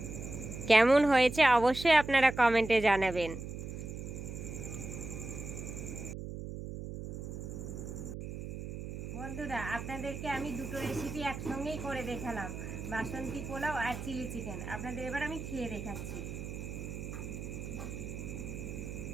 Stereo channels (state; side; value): noise; right; hum, 8 dB below the sound